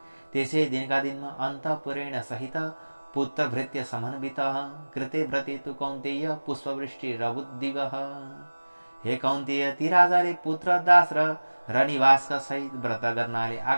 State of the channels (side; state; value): both; inverted; correlation -1.00